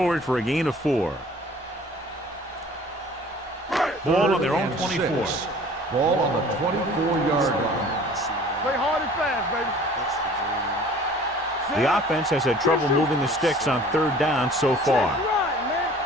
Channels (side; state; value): both; normal; correlation 0.49